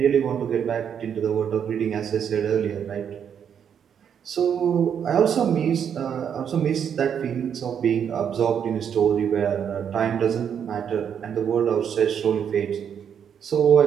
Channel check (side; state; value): left; quieter; 8.1 dB